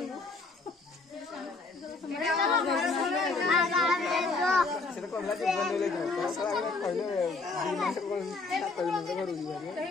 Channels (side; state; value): right; quieter; 3.9 dB